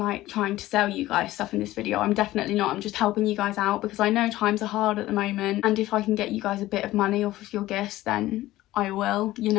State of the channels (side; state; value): right; quieter; 16.2 dB